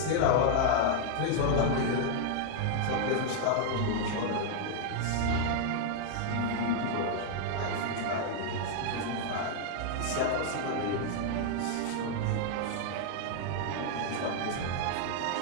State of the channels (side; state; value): both; different; correlation 0.00